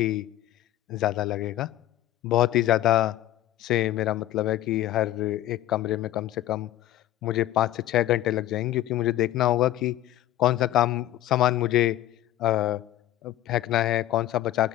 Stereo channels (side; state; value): right; quieter; 13.9 dB